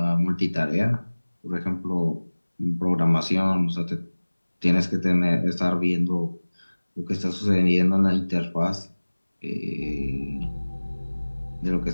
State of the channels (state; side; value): inverted; both; correlation -1.00